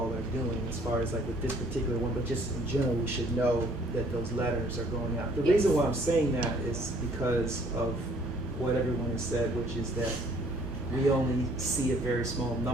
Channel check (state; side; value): normal; both; correlation 0.59